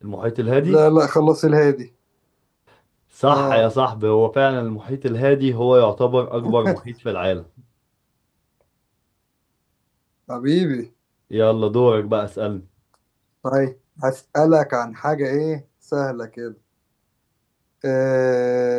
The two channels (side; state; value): both; identical; correlation 1.00